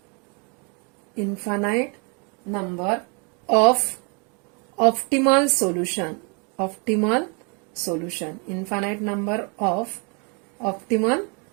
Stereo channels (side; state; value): left; quieter; 34.5 dB